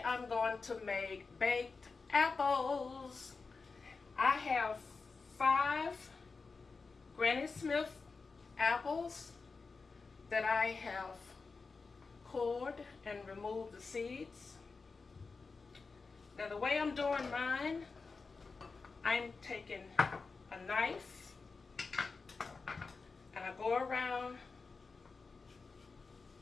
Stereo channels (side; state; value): right; quieter; 4.4 dB